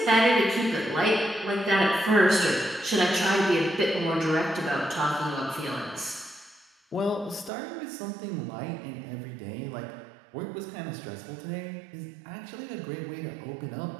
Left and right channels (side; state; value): left; drops out; at 7.5 s